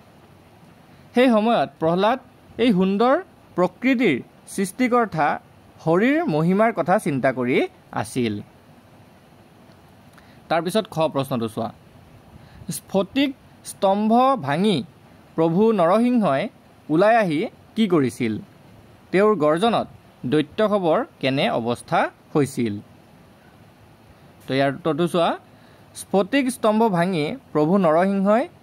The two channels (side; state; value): both; identical; correlation 1.00